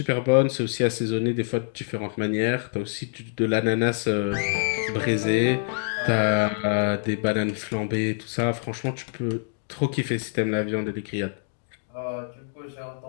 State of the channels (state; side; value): silent; right; digital silence